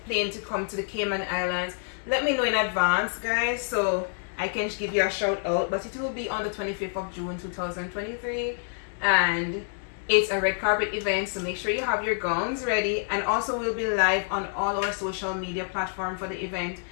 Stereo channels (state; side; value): silent; right; 60 dB below the other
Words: plane to come to the Cayman Islands, let me know in advance, guys, so I can give you a shout out, but it will be on the 25th of June 2023, and it's a red carpet event, so make sure you have your gowns ready. And also we'll be live on all our social media platforms for the event,